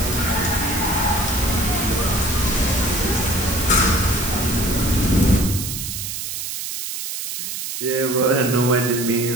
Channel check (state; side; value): noise; right; hiss, 5 dB below the sound